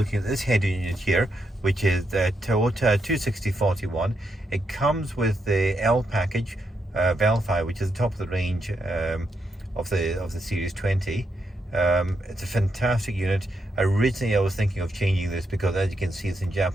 at this head unit here, which is the Toyota 26041. It comes with the L package, Vellfire, which is the top of the range of the Series 20. It's a fantastic unit. Originally I was thinking of changing this because, as you can see, it's in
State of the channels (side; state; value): both; normal; correlation 0.81